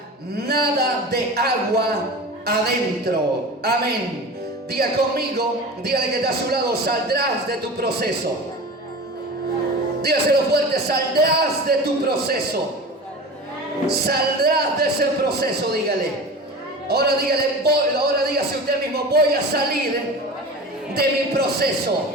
nada de agua adentro. Amén. Diga conmigo, dígale que está a su lado: saldrás de tu proceso. Dígaselo fuerte: saldrás de tu proceso. Saldrás de ese proceso, dígale. Ahora dígale, ahora dígase usted mismo: voy a salir de mi proceso.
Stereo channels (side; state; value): both; normal; correlation 0.33